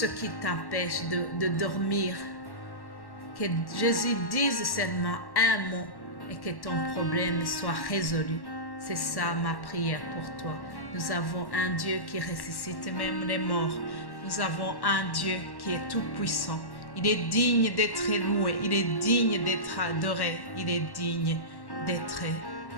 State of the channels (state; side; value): late; right; 1.1 ms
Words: qui t'empêche de dormir, que Jésus dise seulement un mot et que ton problème soit résolu. C'est ça ma prière pour toi. Nous avons un Dieu qui ressuscite même les morts. Nous avons un Dieu qui est tout puissant. Il est digne d'être loué. Il est digne d'être adoré. Il est digne d'être